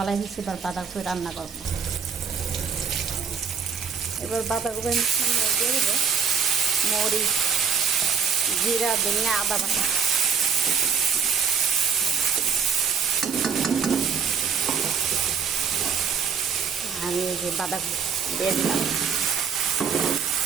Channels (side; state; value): left; quieter; 6.3 dB